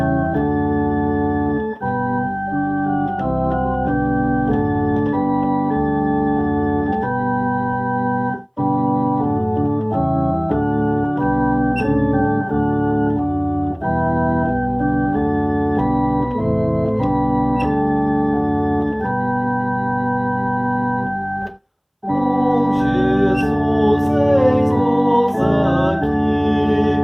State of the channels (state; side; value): identical; both; correlation 1.00